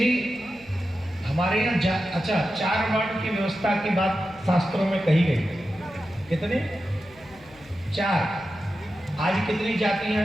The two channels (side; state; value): left; noise; hum, 25 dB below the sound